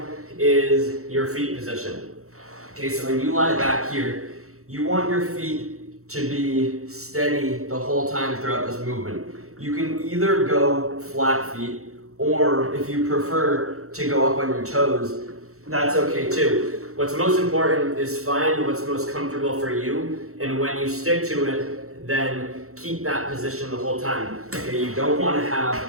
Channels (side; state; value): left; late; 0.64 ms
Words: is your feet position. Okay, so when you lie back here, you want your feet to be steady the whole time throughout this movement. You can either go flat feet, or if you prefer to go up on your toes, that's okay too. What's most important is find what's most comfortable for you, and when you stick to it, then keep that position the whole time. Okay, you don't want to have